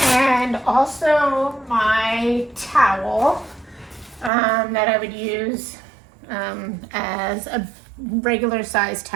And also my towel that I would use as a regular size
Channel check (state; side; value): drops out; left; at 4.3 s